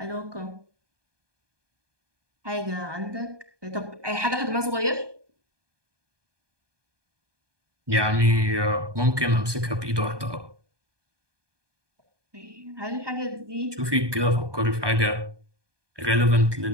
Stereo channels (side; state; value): left; late; 1.2 ms